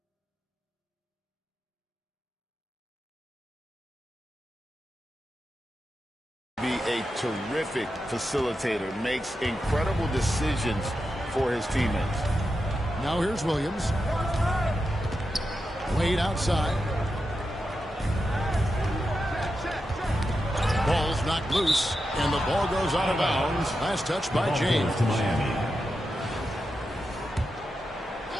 be a terrific facilitator, makes incredible decisions for his teammates. Now here's Williams. Wade outside. Ball's knocked loose, and the ball goes out of bounds. Last touch by James. To Miami.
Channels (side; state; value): both; normal; correlation 0.88